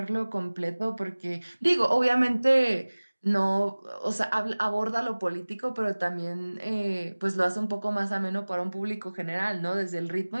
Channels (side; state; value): both; inverted; correlation -1.00